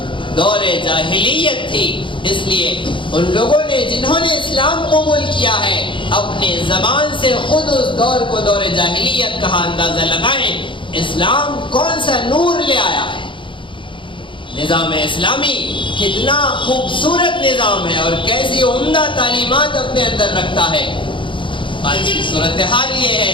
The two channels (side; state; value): right; late; 0.24 ms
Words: دور جاہلیت تھی. اس لیے ان لوگوں نے جنہوں نے اسلام قبول کیا ہے اپنے زبان سے خود اس دور کو دور جاہلیت کہا. اندازہ لگائیں اسلام کون سا نور لے آیا ہے. نظام اسلامی کتنا خوبصورت نظام ہے اور کیسی عمدہ تعلیمات اپنے اندر رکھتا ہے۔ آج کی صورتحال یہ